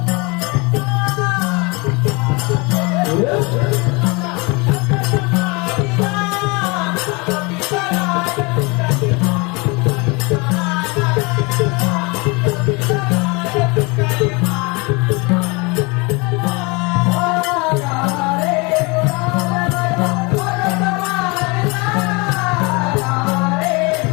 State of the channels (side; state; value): right; quieter; 27.9 dB